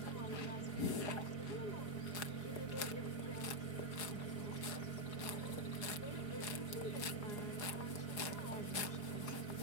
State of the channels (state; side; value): late; right; 4.8 ms